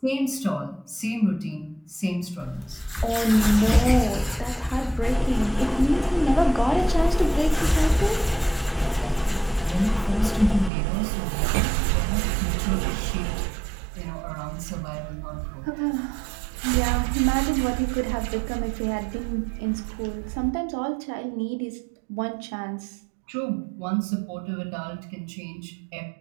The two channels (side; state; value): left; drops out; at 10.7 s